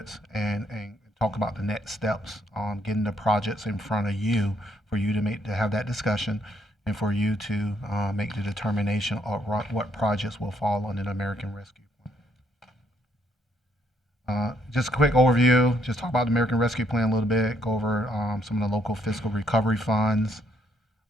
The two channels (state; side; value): normal; both; correlation 0.71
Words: and talk about the next steps on getting the projects in front of you for you to have that discussion and for you to make the determination of what projects will fall under the American Rescue Plan. Just a quick overview, just talk about the American Rescue Plan a little bit, go over some of the local fiscal recovery funds.